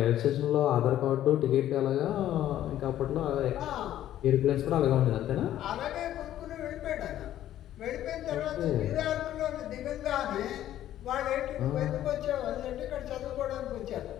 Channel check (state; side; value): quieter; right; 12.4 dB